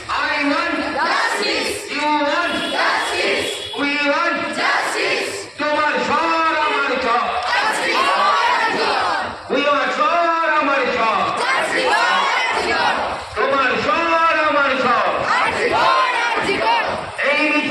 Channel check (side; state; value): both; identical; correlation 1.00